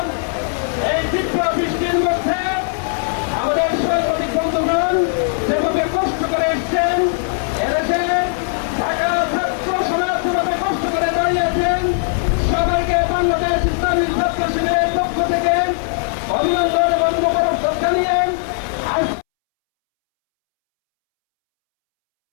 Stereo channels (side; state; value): right; silent; 67 dB below the other